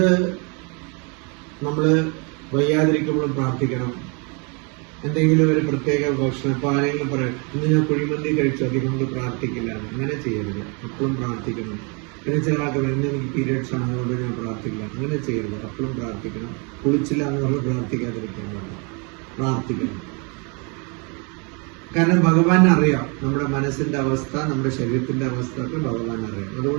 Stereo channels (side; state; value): left; quieter; 33.5 dB